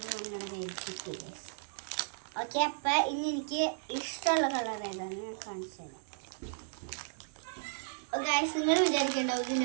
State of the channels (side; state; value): left; silent; digital silence